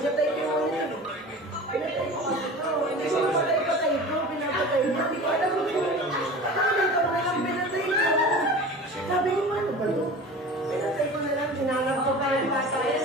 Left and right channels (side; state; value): both; normal; correlation 0.37